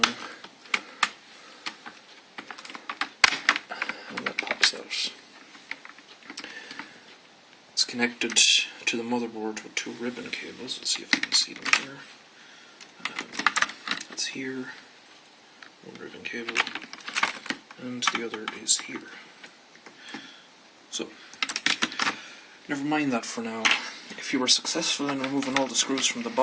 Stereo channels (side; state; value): both; identical; correlation 1.00